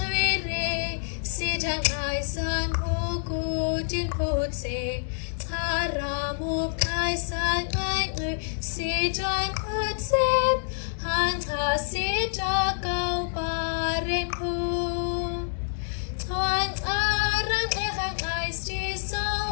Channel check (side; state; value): right; silent; digital silence